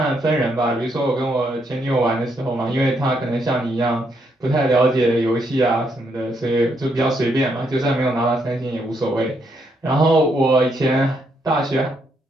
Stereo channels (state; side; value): normal; both; correlation 0.75